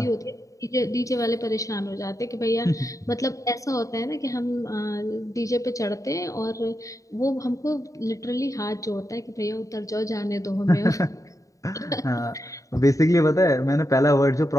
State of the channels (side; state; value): right; late; 0.16 ms